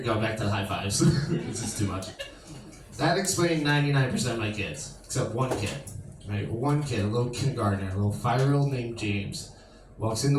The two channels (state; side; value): identical; both; correlation 1.00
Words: going back to the high fives. This is too much. That explained 99% of my kids, except one kid. Right? One kid, a little kindergartner, a little 5-year-old named James, walks into